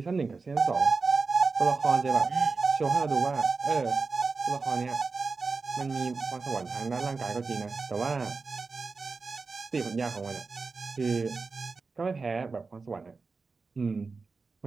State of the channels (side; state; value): left; quieter; 4.3 dB